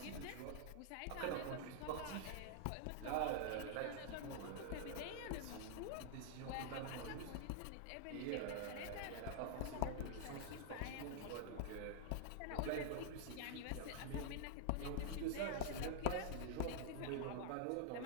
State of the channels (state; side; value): different; both; correlation -0.01